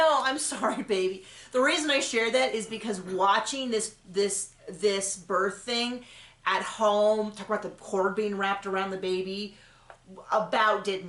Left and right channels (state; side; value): identical; both; correlation 1.00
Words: I'm sorry, baby. The reason I share that is because watching this birth thing at home, talk about the cord being wrapped around the baby, about did